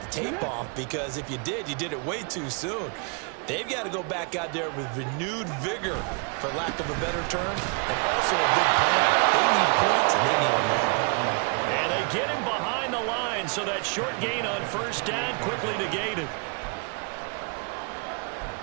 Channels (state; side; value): quieter; left; 36.2 dB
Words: the tape off, because if you did it way too soon. They've got to go back out there with renewed vigor, for lack of a better term, and also a big plan. They need points, and they need them now. And they get him behind the line, so that short gain on first down quickly negated.